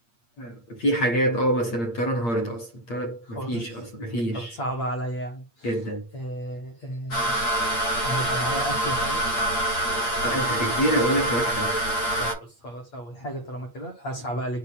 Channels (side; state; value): right; late; 8.6 ms